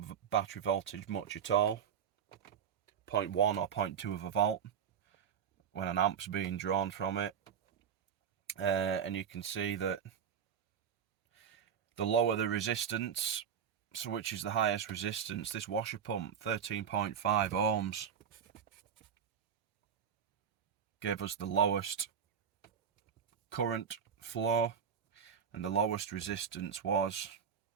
battery voltage much at all. 0.1 or 0.2 of a volt when an amp's being drawn from it. And you can see that the lower the resistance, so which is the highest resistance, this washer pump, 13.5 ohms, gave us the lowest current flow, and the lowest resistance was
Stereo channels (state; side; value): quieter; left; 7.9 dB